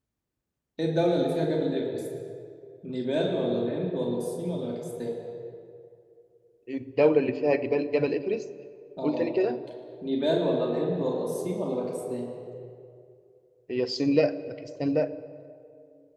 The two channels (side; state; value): both; identical; correlation 1.00